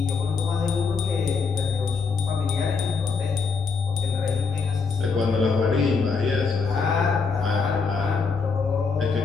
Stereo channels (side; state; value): right; quieter; 4.9 dB